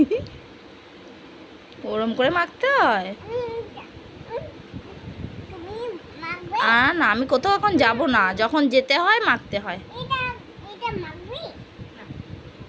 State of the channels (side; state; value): both; identical; correlation 1.00